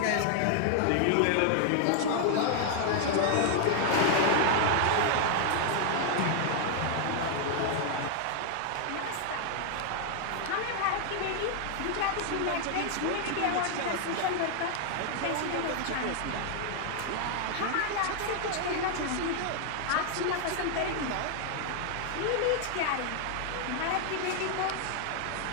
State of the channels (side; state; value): both; different; correlation 0.00